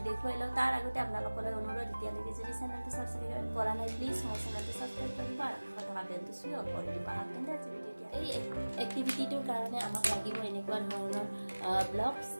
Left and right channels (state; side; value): inverted; both; correlation -1.00